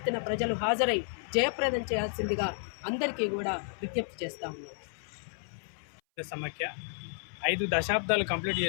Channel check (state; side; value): silent; right; 57 dB below the other